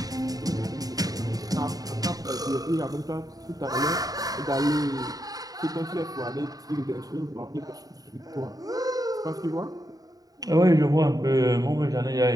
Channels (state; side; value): late; left; 0.18 ms